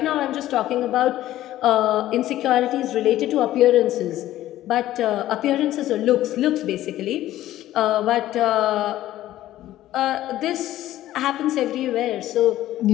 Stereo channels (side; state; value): right; quieter; 14.1 dB